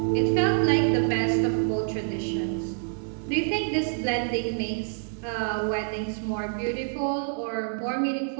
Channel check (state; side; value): silent; left; digital silence